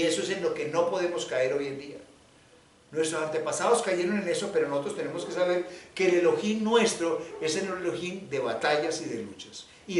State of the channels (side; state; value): both; identical; correlation 1.00